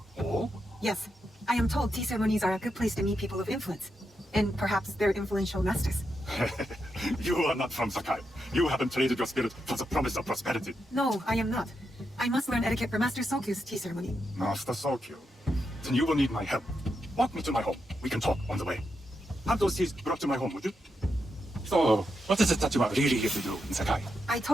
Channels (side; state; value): both; normal; correlation 0.85